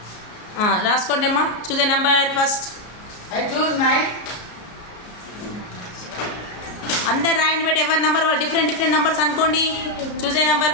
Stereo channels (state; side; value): late; right; 34 ms